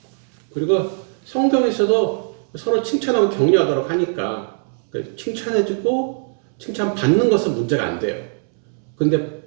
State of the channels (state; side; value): silent; left; 65 dB below the other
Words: 그리고 성경에서도 서로 칭찬하고 격려하도록 하니까 칭찬해주고 칭찬받는 것은 문제가 안 돼요. 근데